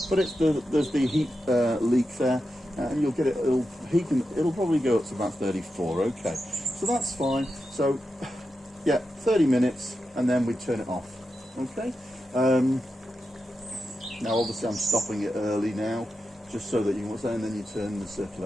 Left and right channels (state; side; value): normal; both; correlation 0.89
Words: there's the heat leak there, and you'll get it. It'll probably go up to about 34. Okay, so that's fine. So yeah, 30 minutes, and then we turn it off. Okay. Now obviously I'm stopping it early now, just so that you can, and then you turn the